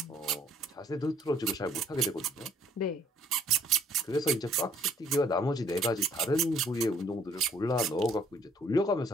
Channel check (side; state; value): both; normal; correlation 0.61